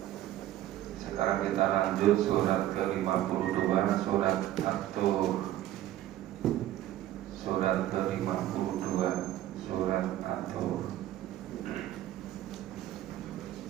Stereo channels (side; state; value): left; quieter; 13.5 dB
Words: Sekarang kita lanjut surat ke-52, surat At-Tur. Surat ke-52, surat At-Tur.